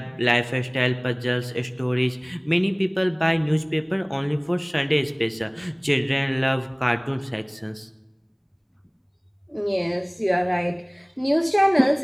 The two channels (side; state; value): both; identical; correlation 1.00